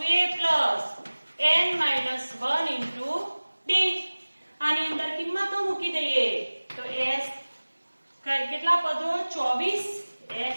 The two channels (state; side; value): inverted; both; correlation -1.00